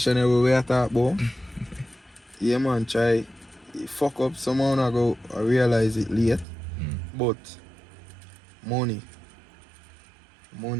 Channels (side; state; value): left; drops out; at 6.5 s